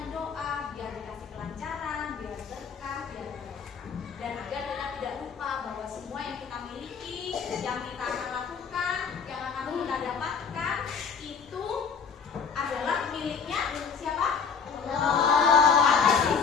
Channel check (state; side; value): quieter; right; 6.1 dB